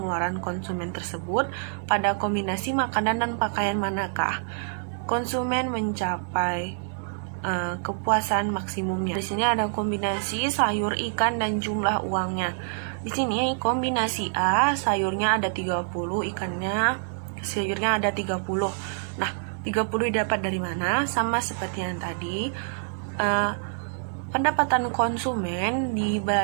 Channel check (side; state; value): left; silent; digital silence